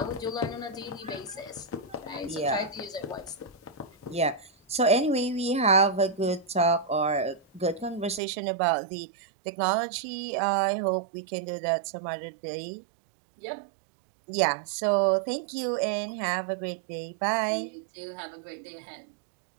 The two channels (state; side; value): drops out; left; at 8.2 s